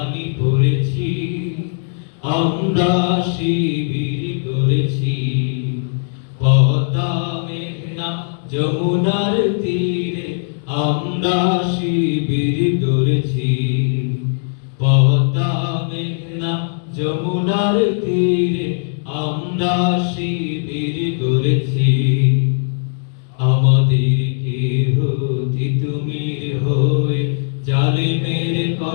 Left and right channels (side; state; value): right; silent; digital silence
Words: পড়েছি। আমরা শিবির করেছি। পদ্মা মেঘনা যমুনার তীরে আমরা শিবির করেছি। পদ্মা মেঘনা যমুনার তীরে আমরা শিবির করেছি। আমাদেরকে হতে তুমির হয়ে জালিমের